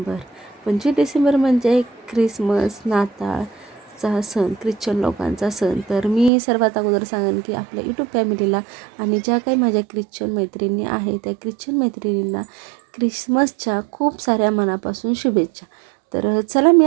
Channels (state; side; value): drops out; left; at 6.3 s